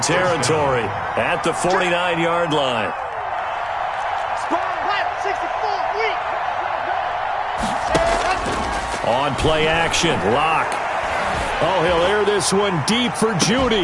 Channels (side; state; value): both; identical; correlation 1.00